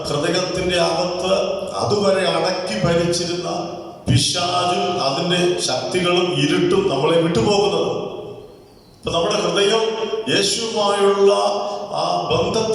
ഹൃദയത്തിന്റെ അകത്ത് അതുവരെ അടക്കി ഭരിച്ചിരുന്ന പിശാചും അതിന്റെ ശക്തികളും ഇരുട്ടും നമ്മളെ വിട്ടുപോകുന്നത്. ഇപ്പൊ നമ്മുടെ ഹൃദയം യേശുവുമായുള്ള ആ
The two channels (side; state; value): both; identical; correlation 1.00